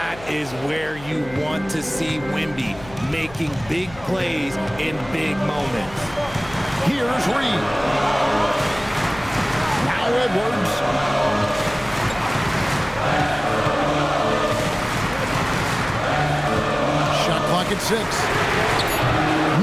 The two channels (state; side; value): noise; left; hum, 18 dB below the sound